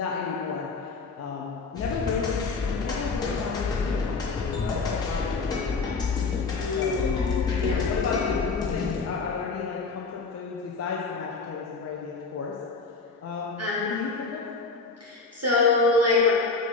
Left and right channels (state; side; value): quieter; right; 4.3 dB